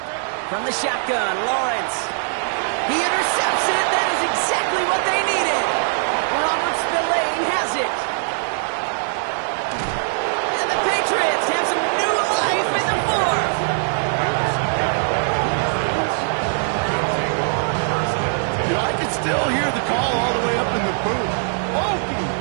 From the shotgun, Lawrence. He intercepts it. That is exactly what they needed. Robert Spillane has it. And the Patriots have some new life in the fourth. You know, I can still hear the call all the way up in the booth. Okie!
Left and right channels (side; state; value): left; silent; digital silence